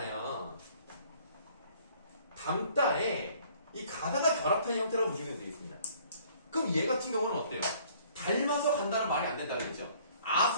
담다에 이 가다가 결합한 형태라고 보시면 되겠습니다. 그럼 얘 같은 경우는 어때요? 닮아서 간다는 말이 안 된다고 했죠.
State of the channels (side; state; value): both; inverted; correlation -0.58